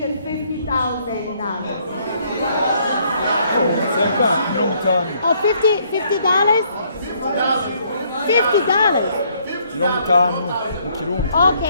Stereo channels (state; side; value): inverted; both; correlation -0.67